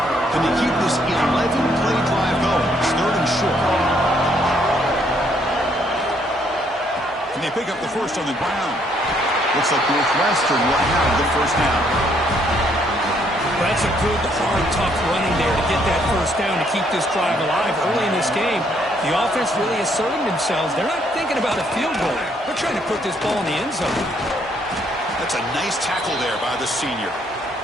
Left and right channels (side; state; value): both; normal; correlation 0.69